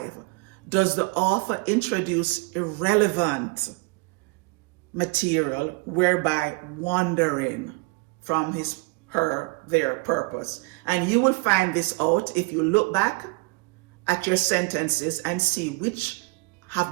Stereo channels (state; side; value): quieter; left; 28.4 dB